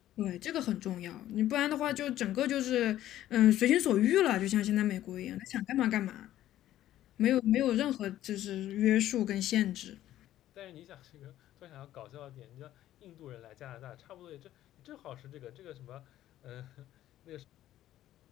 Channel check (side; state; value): right; quieter; 13.1 dB